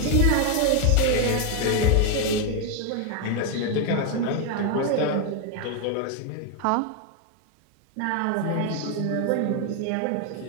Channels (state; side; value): different; both; correlation 0.01